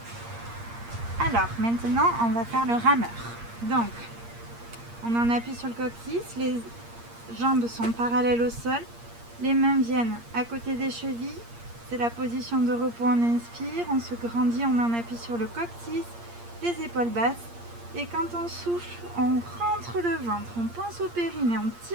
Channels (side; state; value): left; late; 8.6 ms